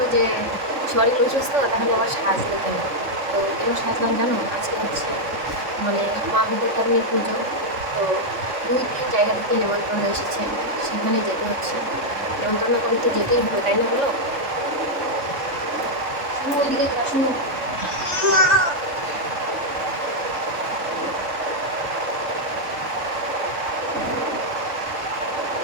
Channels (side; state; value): left; late; 3.6 ms